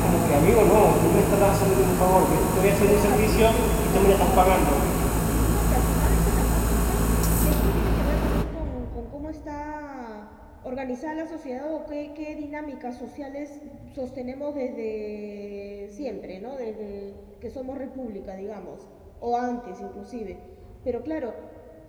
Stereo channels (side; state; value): both; identical; correlation 1.00